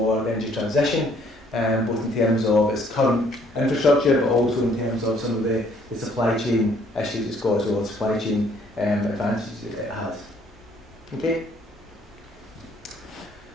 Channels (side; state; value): both; normal; correlation 0.62